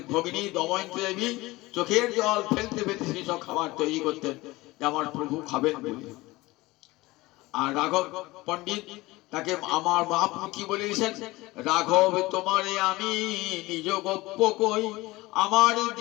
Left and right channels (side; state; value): right; quieter; 20.4 dB